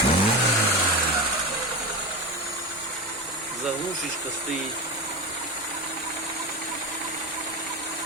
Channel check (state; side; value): normal; both; correlation 0.21